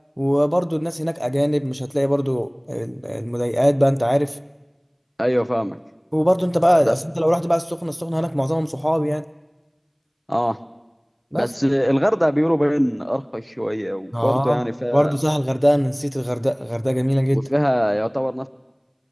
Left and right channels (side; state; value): both; identical; correlation 1.00